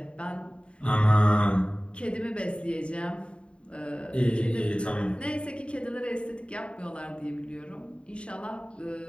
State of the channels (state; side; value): late; right; 0.057 ms